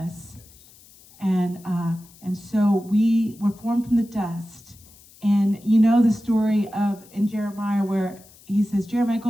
And so we were formed from the dust. And you know the story of in Jeremiah where he says, Jeremiah,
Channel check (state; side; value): noise; left; hiss, 25 dB below the sound